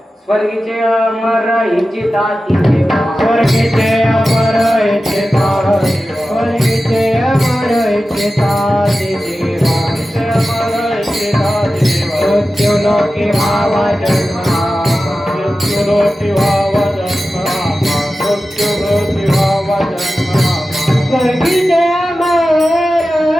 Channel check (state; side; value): normal; both; correlation 0.94